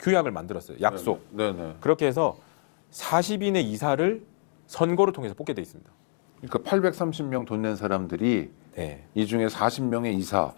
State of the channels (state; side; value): silent; right; digital silence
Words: 규약을 만들었어요. 약속. 네네. 그렇게 해서 40인의 이사를 선거를 통해서 뽑게 돼 있습니다. 그러니까 830명 돈 낸 사람들이 네. 이 중에 40명의 이사.